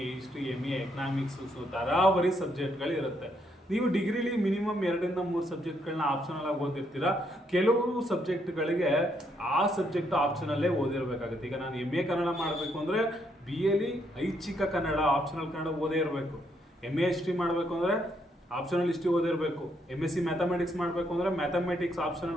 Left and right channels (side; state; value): both; normal; correlation 0.74